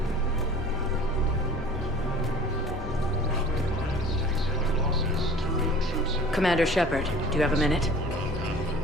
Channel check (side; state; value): both; normal; correlation 0.45